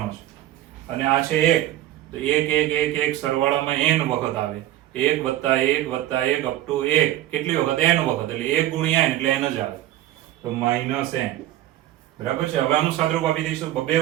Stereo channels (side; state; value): left; quieter; 14.1 dB